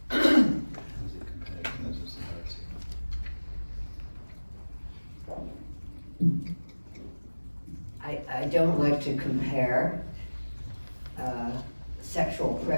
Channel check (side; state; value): both; inverted; correlation -1.00